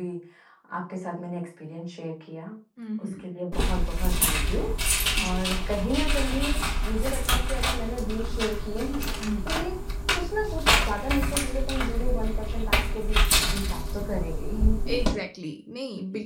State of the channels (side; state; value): both; identical; correlation 1.00